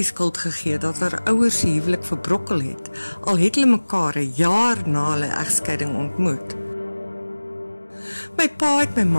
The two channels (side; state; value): both; inverted; correlation -1.00